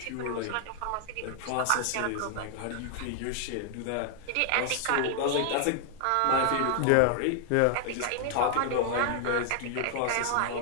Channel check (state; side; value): different; both; correlation 0.00